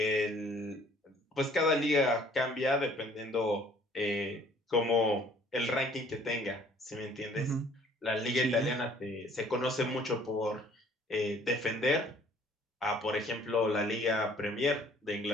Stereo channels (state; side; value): normal; both; correlation 0.57